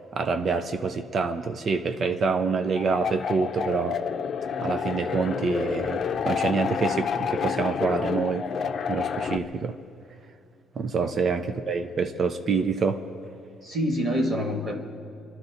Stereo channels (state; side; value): normal; both; correlation 0.70